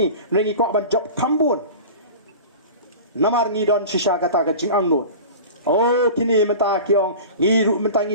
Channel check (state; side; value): inverted; both; correlation -0.35